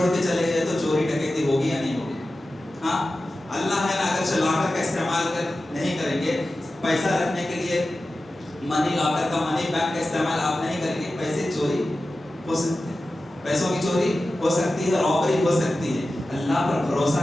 کے چلے گئے تو چوری ڈکیتی ہوگی یا نہیں ہوگی؟ ہاں, اللہ ہے نا, اگر لاکر کا استعمال نہیں کریں گے, پیسہ رکھنے کے لیے منی لاکر کا, منی بینک کا استعمال آپ نہیں کریں گے, پیسے چوری ہو سکتے ہیں, پیسوں کی چوری ہو سکتی ہے, رابری ہو سکتی ہے. اللہ پر بھروسہ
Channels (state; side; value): normal; both; correlation 0.94